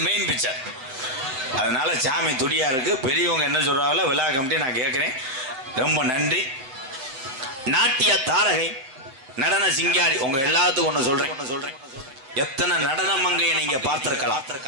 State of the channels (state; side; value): late; left; 7.7 ms